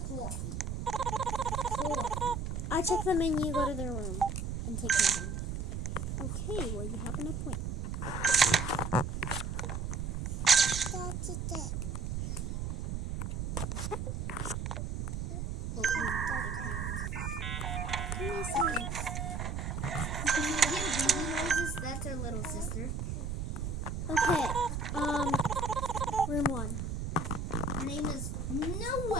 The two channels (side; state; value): right; noise; rumble, 3 dB below the sound